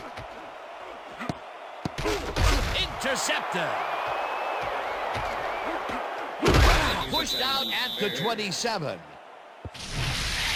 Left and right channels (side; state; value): both; identical; correlation 1.00